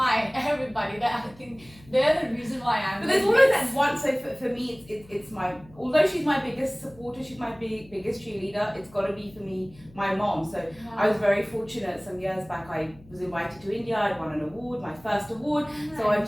everybody. That I think they're the reason why I'm. But there's always that one. So for me, it's my. Although she's my biggest supporter, she's my biggest cheerleader. It's got to be for me my mom. So I was very fortunate. Some years back, I was invited to India. I won an award, my first award. So I've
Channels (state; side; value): noise; left; hum, 24 dB below the sound